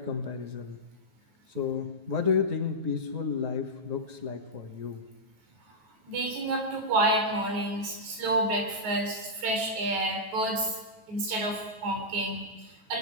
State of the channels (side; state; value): left; late; 9.4 ms